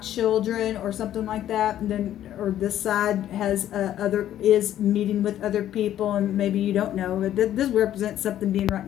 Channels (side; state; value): right; quieter; 11.8 dB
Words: children or something like that, and then, or this side has is meeting with other people, and maybe you don't know, but this represents something being right in